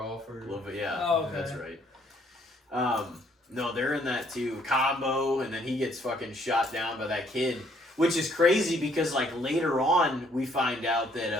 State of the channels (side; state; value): both; normal; correlation 0.65